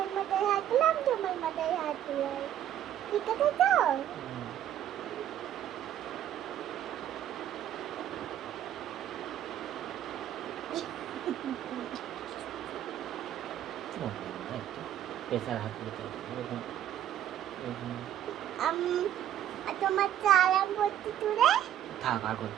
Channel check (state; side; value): quieter; left; 11.2 dB